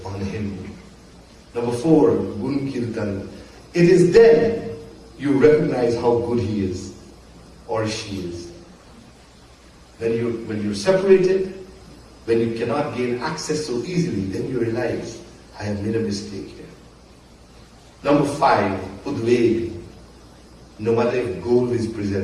on him. Number 4, gun kirtan. It is then you recognize how good he is or she is. When you're separated, when you cannot gain access so easily, then you realize, I have made a mistake here. Number 5, udveg. No matter if gold is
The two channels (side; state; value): both; identical; correlation 1.00